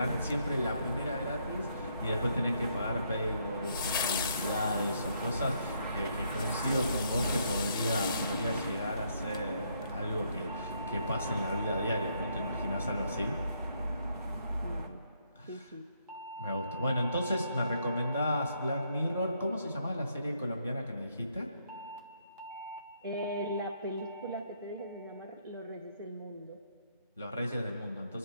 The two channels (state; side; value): inverted; both; correlation -0.72